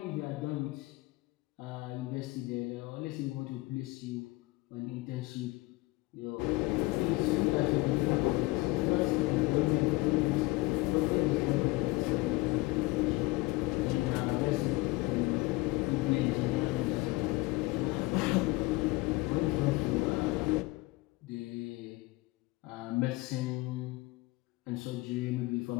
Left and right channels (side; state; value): right; quieter; 21.9 dB